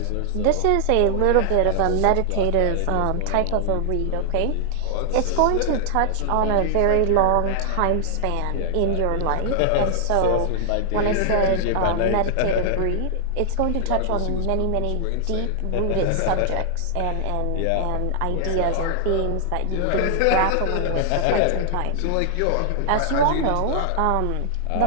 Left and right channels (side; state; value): both; different; correlation 0.00